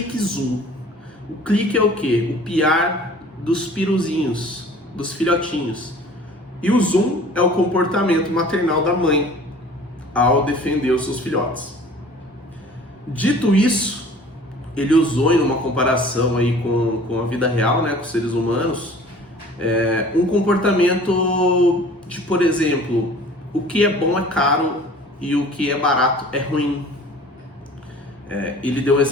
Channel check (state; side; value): normal; both; correlation 0.47